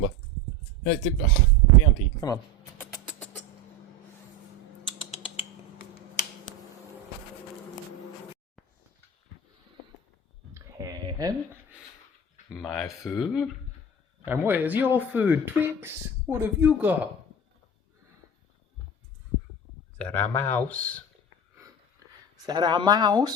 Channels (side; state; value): both; normal; correlation 0.27